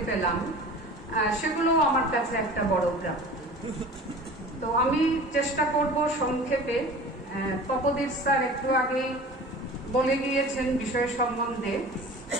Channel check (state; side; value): normal; both; correlation 0.40